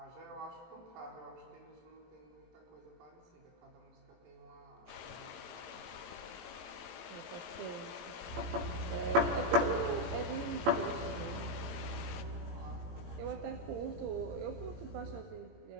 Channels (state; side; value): late; left; 18 ms